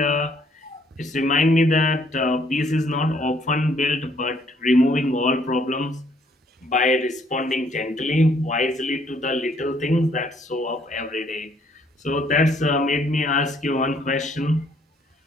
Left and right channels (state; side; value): normal; both; correlation 0.65